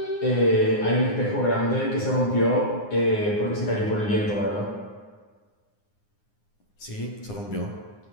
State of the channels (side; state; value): right; late; 9.7 ms